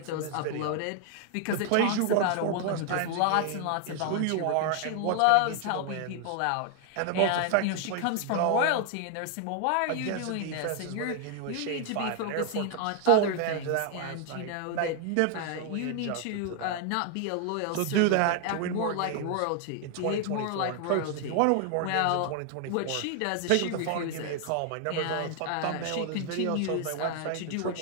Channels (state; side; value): different; both; correlation 0.00